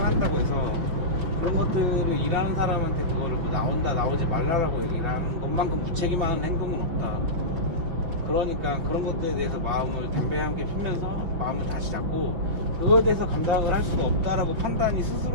해서 그런 것들을 일하는 사람한테 그거를 뭐 나온다 나오지 말라라고 얘기를 하는 것만큼 무책임한 행동은 없다. 그러니까 그런 것들에 대해서 마음을 담배함께 피면서 마음을 다시 잡고 그거에 대해서 감당을 할 수가 없다라고 판단이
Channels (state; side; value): late; left; 6.0 ms